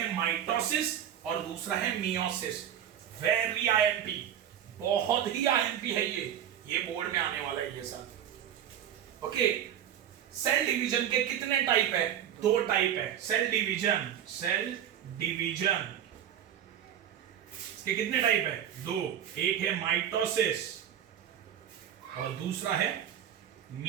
माइटोसिस और दूसरा है मियोसिस। वेरी आईएमपी, बहुत ही आईएमपी है ये बोर्ड में आने वाला है ये सब। ओके, सेल डिवीजन के कितने टाइप है? दो टाइप है सेल डिवीजन। इसके कितने टाइप है? दो, एक है माइटोसिस और दूसरा है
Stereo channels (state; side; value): quieter; left; 9.9 dB